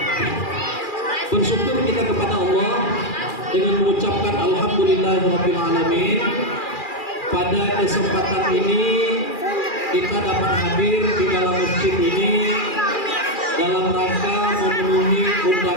bersyukur kita kepada Allah dengan mengucapkan alhamdulillahirabbil alamin. Pada kesempatan ini kita dapat hadir di dalam masjid ini dalam rangka memenuhi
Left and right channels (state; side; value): late; right; 2.4 ms